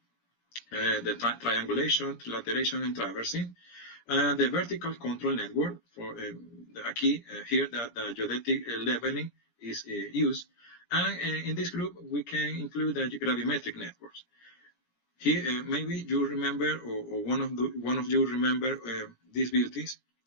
the triangulation, trilateration, and traversing. The vertical control network for here the geodetic leveling is used. And in this group, we can include the gravimetric networks. Here, maybe you remember, or one of you remember these beauties,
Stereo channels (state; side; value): late; right; 17 ms